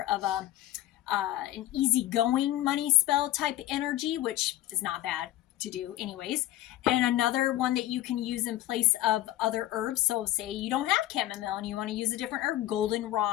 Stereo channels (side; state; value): right; quieter; 14.6 dB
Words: of a an easygoing money spell type energy, which is not bad to do anyways. And another one that you can use in place of other herbs. So say you don't have chamomile and you want to use a different herb.